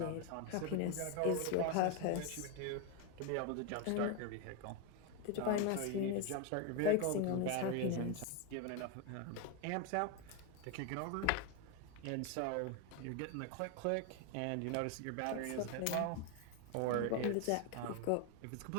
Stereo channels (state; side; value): different; both; correlation 0.02